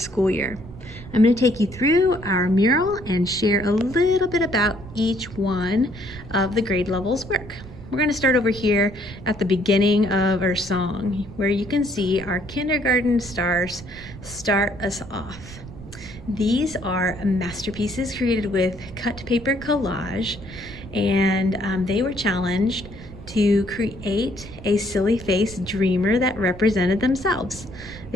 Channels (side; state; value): right; noise; rumble, 16 dB below the sound